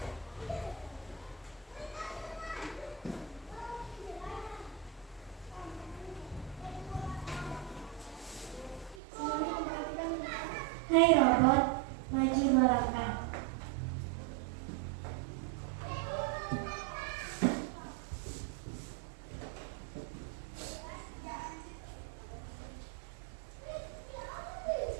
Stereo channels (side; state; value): left; drops out; at 9.0 s